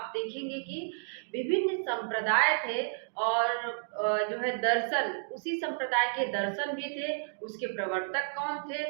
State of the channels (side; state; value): left; silent; digital silence